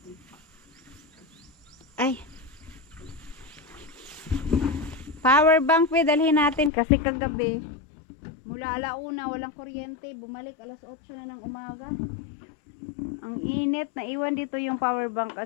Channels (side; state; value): right; drops out; at 6.7 s